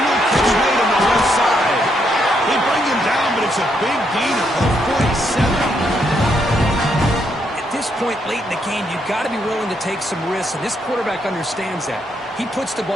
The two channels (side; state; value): both; normal; correlation 0.76